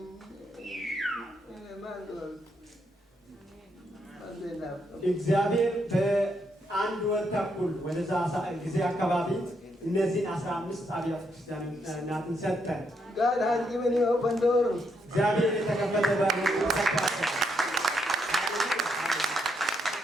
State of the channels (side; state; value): both; normal; correlation 0.77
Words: Mandal. እግዚአብሔር በአንድ ወር ተኩል ወደዛ ጊዜ አካባቢ እነዚህን 15 አብያተ ክርስቲያናትን ሰጠን። God has given you open door. እግዚአብሔር የተከፈተ በር ሰጥቷል።